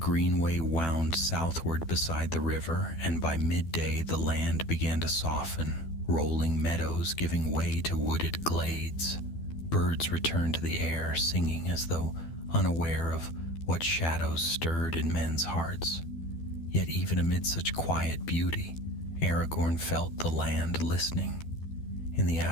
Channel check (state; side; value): late; right; 12 ms